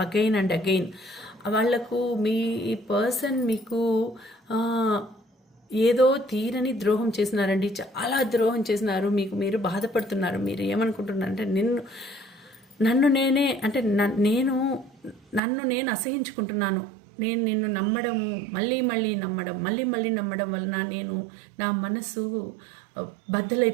again and again. వాళ్లకు మీ పర్సన్ మీకు ఏదో తీరని ద్రోహం చేసినారండి, చాలా ద్రోహం చేసినారు. మీకు మీరు బాధపడుతున్నారు. మీరు ఏమనుకుంటున్నారు అంటే నన్ను నేను అసహించుకుంటున్నాను. నేను నిన్ను నమ్మడము, మళ్ళీ మళ్ళీ నమ్మడం వలన నా మనసు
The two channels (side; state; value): left; drops out; at 15.4 s